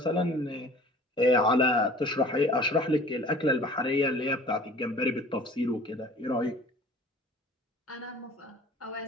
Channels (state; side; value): normal; both; correlation 0.46